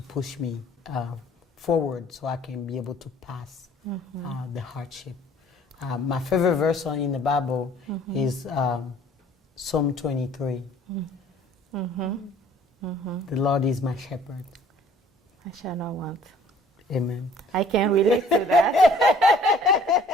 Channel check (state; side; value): normal; both; correlation 0.55